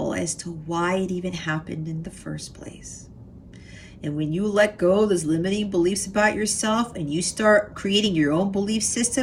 as to why it even happened in the first place. And when you let go of those limiting beliefs about yourself and you start creating your own belief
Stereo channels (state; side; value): identical; both; correlation 1.00